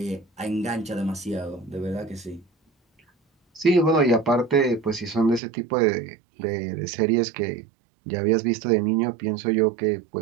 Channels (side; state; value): left; drops out; at 5.4 s